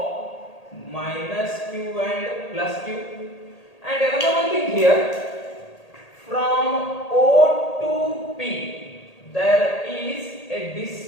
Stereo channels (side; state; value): right; late; 1.8 ms